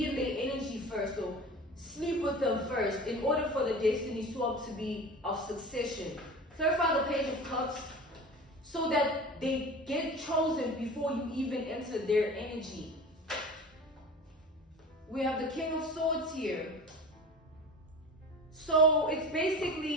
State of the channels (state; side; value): normal; both; correlation 0.35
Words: in their energy first, or sleep with them first, in order for the destiny swap to be of succession. Clarify the Page of Cups so that they get chosen before you even enter their energy. We have the King of Swords here. So it's